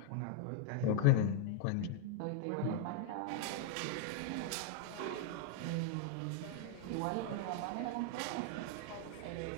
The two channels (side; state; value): both; different; correlation 0.00